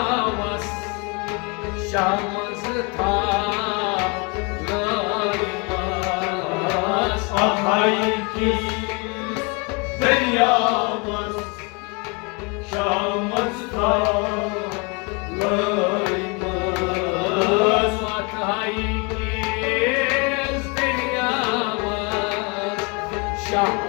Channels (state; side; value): quieter; right; 31.1 dB